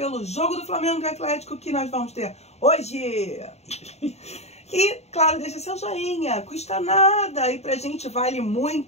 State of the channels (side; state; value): right; late; 0.31 ms